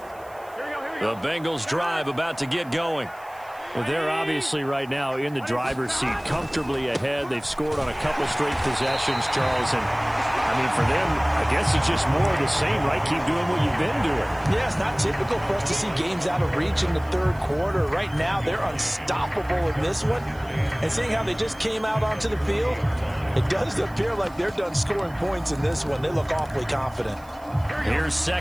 The Bengals drive about to get going. Well, they're obviously right now in the driver's seat, comfortably ahead. They've scored on a couple straight possessions, Charles. And, I mean, for them, I guess it's just more of the same, right? Keep doing what you've been doing. Yeah, it's not typical for us to see games out of reach in the third quarter. Right now, they're unstoppable in this one. And seeing how they just came out onto the field, it does appear like they're done scoring points in this one. They look awfully confident. Here's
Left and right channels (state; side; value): noise; right; hiss, 26 dB below the sound